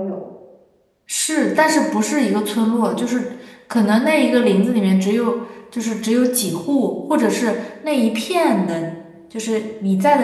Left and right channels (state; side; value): identical; both; correlation 1.00